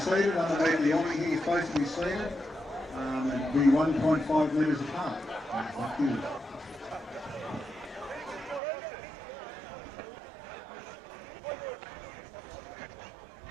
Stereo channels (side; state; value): left; drops out; at 8.6 s